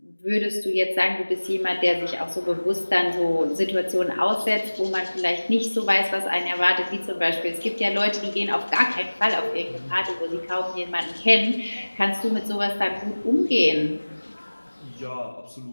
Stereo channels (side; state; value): both; inverted; correlation -1.00